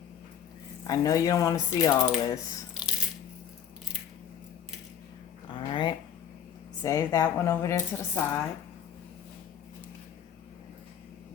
I know you don't want to see all this. Alright. Save that one over there to the side.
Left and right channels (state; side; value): quieter; right; 8.6 dB